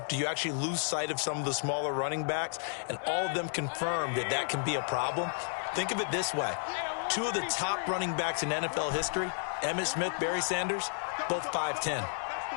Do you actually lose sight of some of the smaller running backs? And all of them confirmed that that can be a problem. Think of it this way. 2 of the top running backs in NFL history, Emmitt Smith, Barry Sanders, both 5'10".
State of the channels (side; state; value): right; silent; digital silence